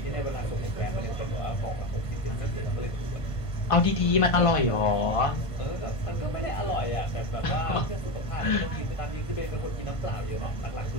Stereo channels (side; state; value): right; late; 1.5 ms